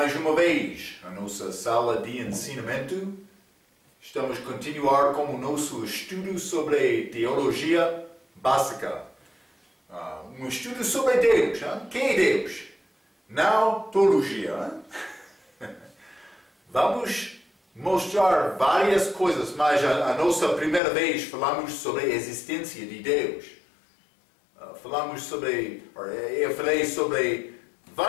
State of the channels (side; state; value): right; drops out; at 20.8 s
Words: uma vez à nossa sala de ensinamento. Estamos a continuar com o nosso estudo sobre teologia básica. Um estudo sobre Deus. Quem é Deus? Não teologia. Vamos mostrar várias coisas, mas a nossa primeira vez falamos sobre a existência de Deus. Eu falei sobre